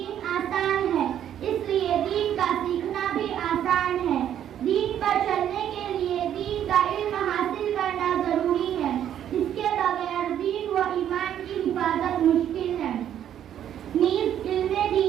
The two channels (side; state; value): left; quieter; 10.3 dB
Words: آسان ہے اس لیے دین کا سیکھنا بھی آسان ہے. دین پر چلنے کے لیے دین کا علم حاصل کرنا ضروری ہے. اس کے بغیر دین و ایمان کی حفاظت مشکل ہے. نیز علم